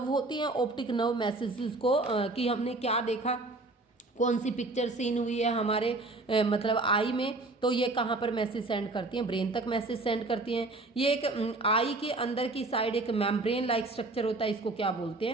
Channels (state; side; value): quieter; left; 3.0 dB